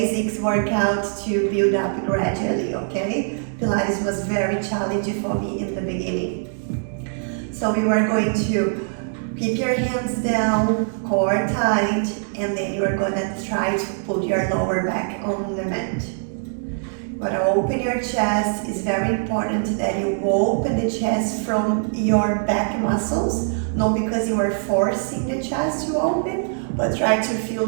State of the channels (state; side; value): silent; left; 64 dB below the other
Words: workout to build up gradually, okay? Pilates was very challenging for me in the beginning. So we were going to keep your hands down, core tight, and then you are gonna try to put your lower back on the mat. You gotta open your chest. It's very important that you open the chest from your back muscles, not because you are forcing the chest to open, but try to feel